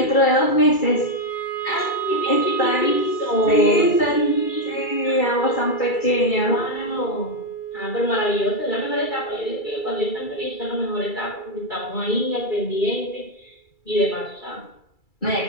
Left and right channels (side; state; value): right; late; 2.3 ms